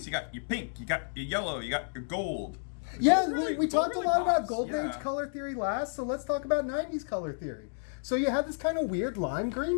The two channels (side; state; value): right; silent; digital silence